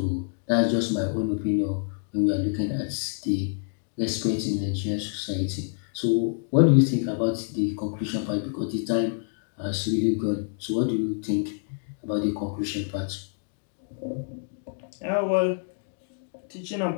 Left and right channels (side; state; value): right; silent; digital silence